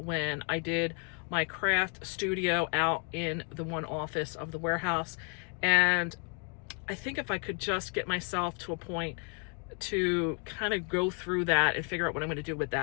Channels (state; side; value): quieter; right; 38.2 dB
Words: I did my craft studio out in the one office of the warehouse. And I think if I could just get myself to a point to kind of go through that and figure out what I'm going to do with